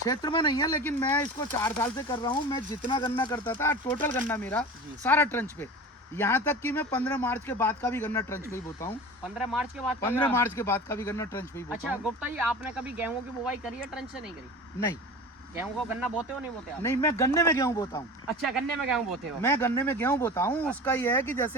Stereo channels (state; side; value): normal; both; correlation 0.34